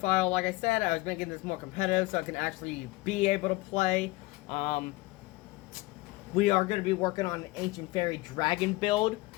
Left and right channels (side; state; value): right; quieter; 20.9 dB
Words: Like I said, I was making this more competitive so I can actually be able to play. We are going to be working on an Ancient Fairy Dragon build.